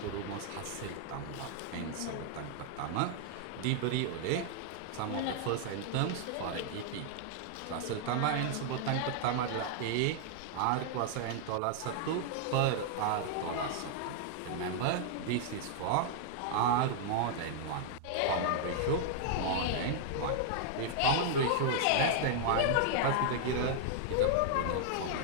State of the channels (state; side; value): different; both; correlation 0.00